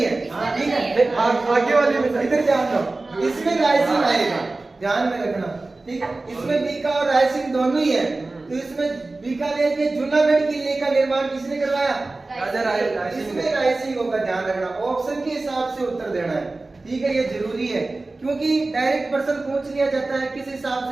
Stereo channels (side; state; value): left; quieter; 3.2 dB